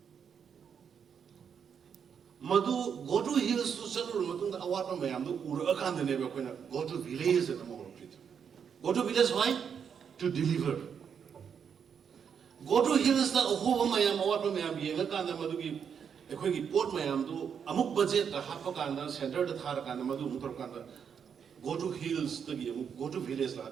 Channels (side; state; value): left; quieter; 7.3 dB